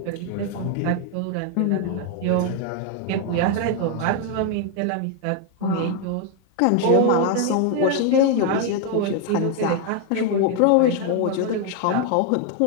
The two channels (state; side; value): different; both; correlation 0.01